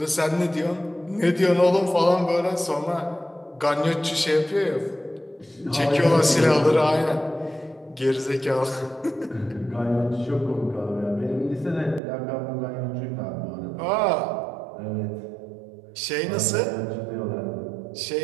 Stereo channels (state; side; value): drops out; left; at 12.0 s